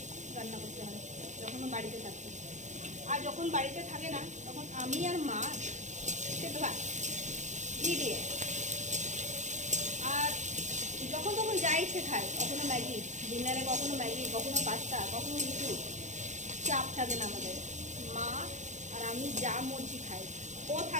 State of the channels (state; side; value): late; left; 0.35 ms